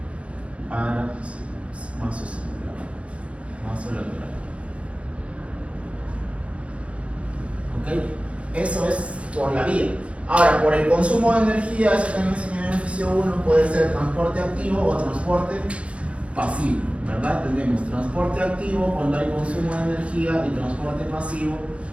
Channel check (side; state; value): left; late; 0.062 ms